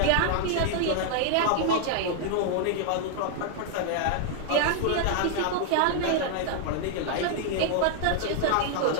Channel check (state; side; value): different; both; correlation 0.00